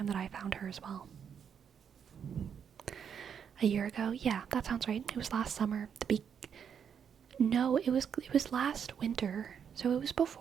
that I found her as well. A year ago? Yeah, that sounds right. It was last summer. No, it was last winter. So it was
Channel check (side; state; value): left; quieter; 7.6 dB